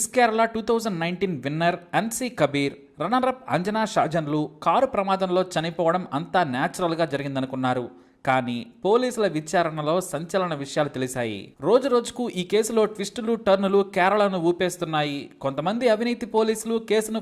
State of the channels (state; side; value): identical; both; correlation 1.00